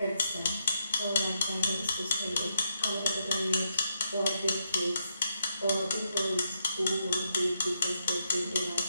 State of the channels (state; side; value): inverted; both; correlation -0.80